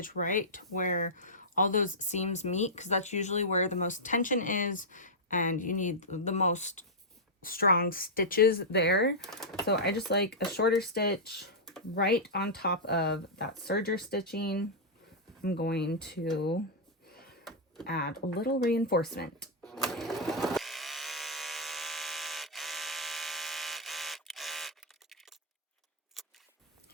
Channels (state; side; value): normal; both; correlation -0.09